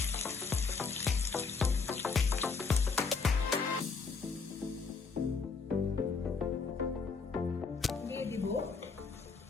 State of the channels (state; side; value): quieter; right; 4.9 dB